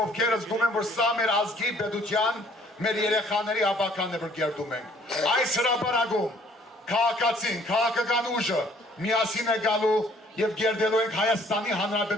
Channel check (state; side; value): normal; both; correlation 0.59